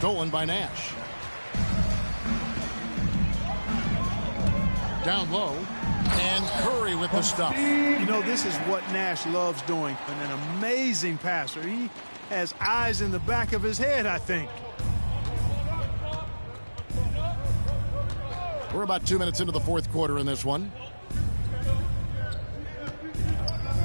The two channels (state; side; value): inverted; both; correlation -1.00